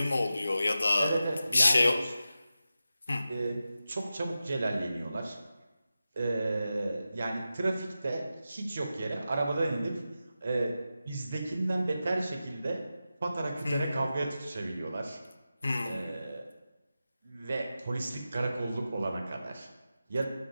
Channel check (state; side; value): inverted; both; correlation -0.92